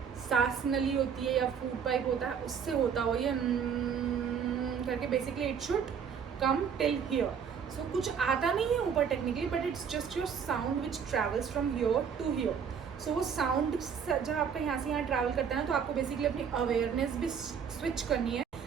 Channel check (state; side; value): quieter; left; 7.1 dB